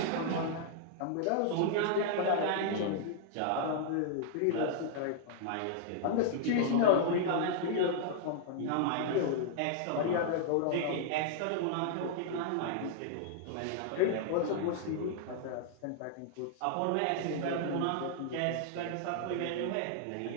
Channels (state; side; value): different; both; correlation -0.01